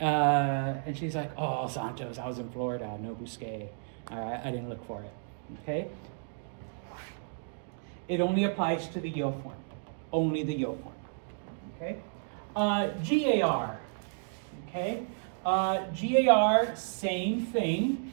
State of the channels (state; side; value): silent; left; digital silence